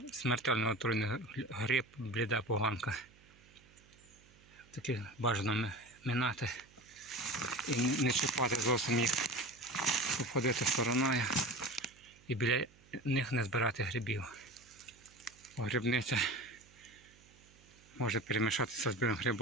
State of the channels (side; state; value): right; noise; hum, 26 dB below the sound